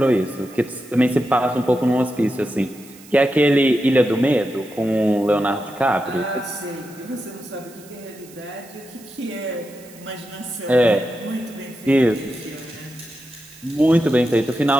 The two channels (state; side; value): noise; right; hiss, 22 dB below the sound